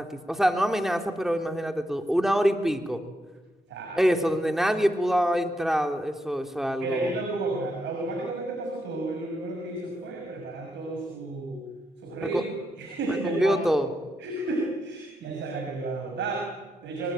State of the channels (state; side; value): normal; both; correlation 0.82